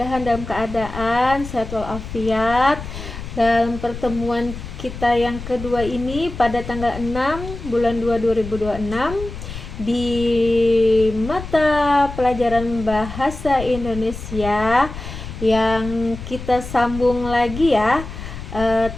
dalam keadaan sehat walafiat. Dalam pertemuan kita yang kedua ini pada tanggal 6 bulan 2 2026 di mata pelajaran Bahasa Indonesia yang kita sambung lagi ya,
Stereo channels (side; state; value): left; noise; rumble, 10 dB below the sound